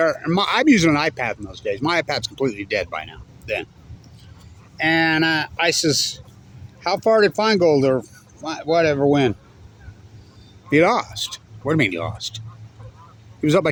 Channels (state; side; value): identical; both; correlation 1.00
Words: And I'm using an iPad in those days. My iPad's completely dead by now, then. And I says, how far did Feingold or whatever win? He lost. What do you mean he lost? He was up by